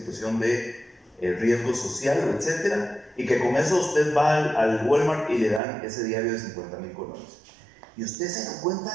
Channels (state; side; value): drops out; left; at 5.6 s